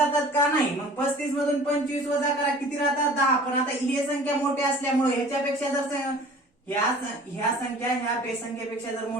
का? नाही. मग 35 मधून 25 वजा करा, किती राहतात? 10. पण आता ही संख्या मोठी असल्यामुळे ह्याच्यापेक्षा जर ह्या संख्या ह्या संख्येपेक्षा जर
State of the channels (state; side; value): normal; both; correlation 0.46